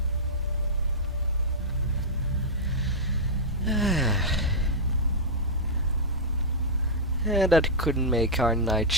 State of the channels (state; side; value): normal; both; correlation -0.08